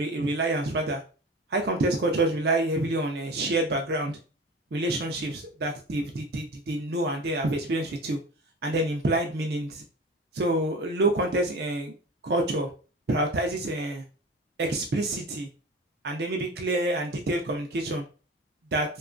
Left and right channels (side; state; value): both; normal; correlation 0.34